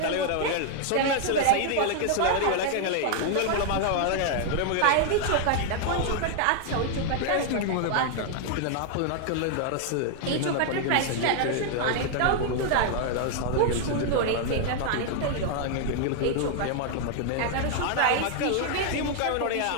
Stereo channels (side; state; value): both; different; correlation 0.00